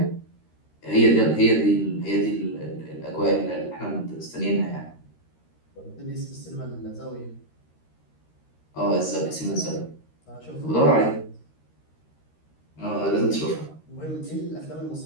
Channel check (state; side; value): late; right; 13 ms